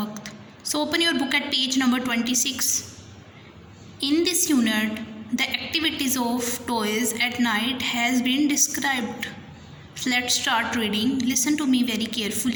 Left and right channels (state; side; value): identical; both; correlation 1.00